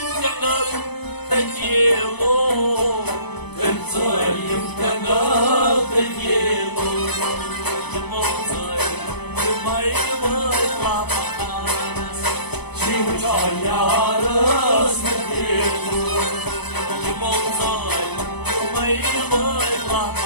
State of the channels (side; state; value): right; late; 0.99 ms